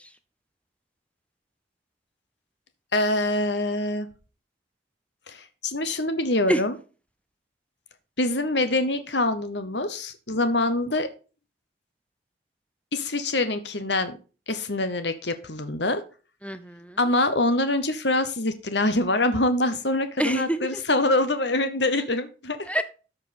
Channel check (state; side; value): normal; both; correlation 0.05